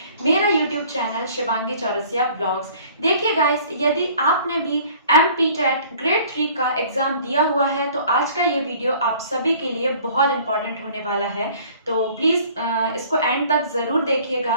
मेरा YouTube channel Shivangi Chaurasia blogs. देखिए गाइस, यदि आपने भी MPTET ग्रेड 3 का एग्जाम दिया हुआ है तो आज का ये वीडियो आप सभी के लिए बहुत इंपॉर्टेंट होने वाला है, तो प्लीज़ इसको एंड तक ज़रूर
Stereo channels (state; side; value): inverted; both; correlation -0.52